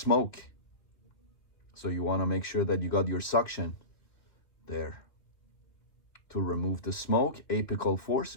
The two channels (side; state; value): right; late; 2.8 ms